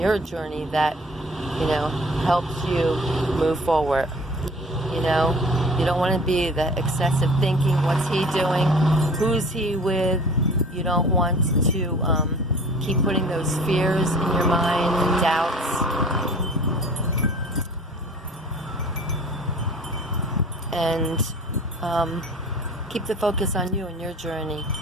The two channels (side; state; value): both; normal; correlation 0.46